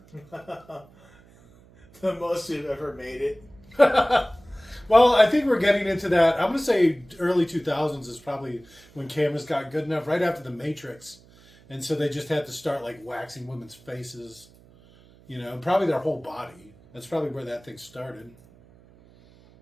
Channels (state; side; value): noise; right; hum, 26 dB below the sound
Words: The most we've ever made it. Well, I think we're getting into that. I'm going to say early 2000s is probably when cameras got good enough, right after The Matrix. And so they just had to start like waxing women's faces, you know, probably their whole body. That's probably where that thing started.